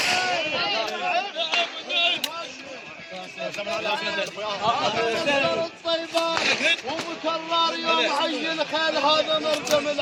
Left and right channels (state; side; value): identical; both; correlation 1.00